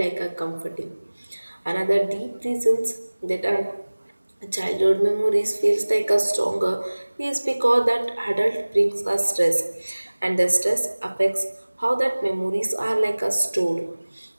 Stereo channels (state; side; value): inverted; both; correlation -1.00